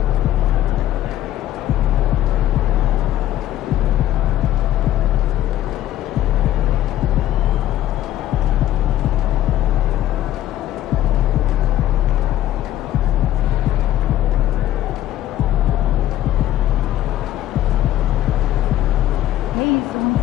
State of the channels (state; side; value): quieter; right; 13.2 dB